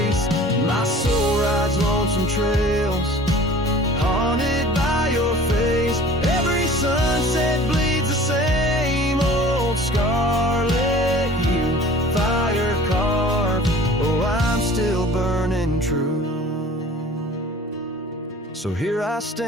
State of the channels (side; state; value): both; normal; correlation 0.45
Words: my soul rides lonesome trails, haunted by your face. Every sunset bleeds the same old scarlet hue, fire carved. Oh, I'm still burning true. So here I